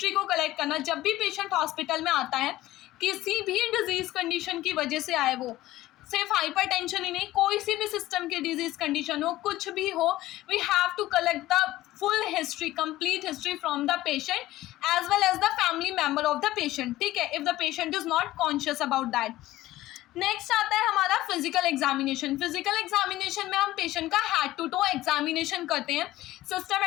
को कलेक्ट करना। जब भी पेशेंट हॉस्पिटल में आता है, किसी भी डिजीज कंडीशन की वजह से आए, वो सिर्फ हाइपरटेंशन ही नहीं, कोई सी भी सिस्टम की डिजीज कंडीशन हो, कुछ भी हो, we have to collect the full history, complete history from the patient as well as the family member of the patient, ठीक है, if the patient is not conscious about that. Next आता है हमारा physical examination. Physical examination में हम patient का head to to examination करते हैं।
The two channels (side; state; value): right; quieter; 16.0 dB